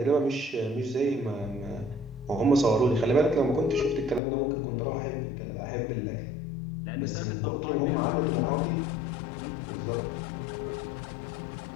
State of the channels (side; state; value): right; drops out; at 4.2 s